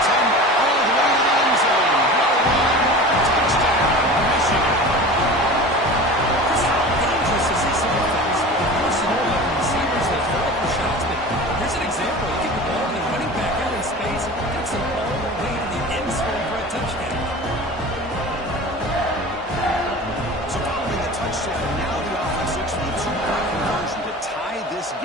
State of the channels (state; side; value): normal; both; correlation 0.36